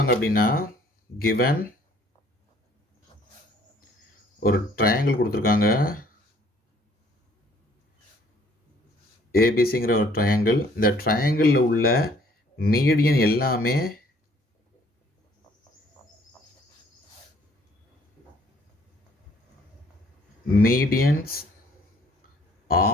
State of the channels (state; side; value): normal; both; correlation 0.60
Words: அப்படின்னா கிவன் ஒரு ட்ரையாங்கிள் கொடுத்துருக்காங்க, ஏபிசிங்கிற ஒரு ட்ரையாங்கிள். இந்த ட்ரையாங்கிளில் உள்ள மீடியன் எல்லாமே medians